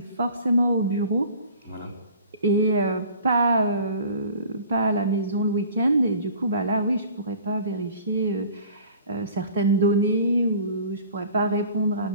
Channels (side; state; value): both; inverted; correlation -0.47